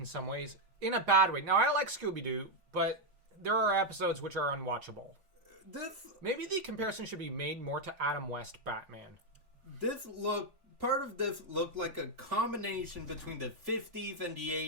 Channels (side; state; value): left; late; 3.5 ms